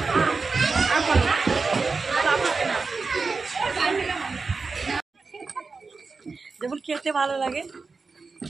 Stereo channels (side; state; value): left; quieter; 4.4 dB